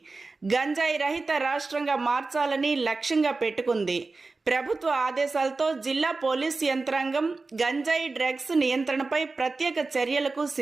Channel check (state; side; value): quieter; left; 3.8 dB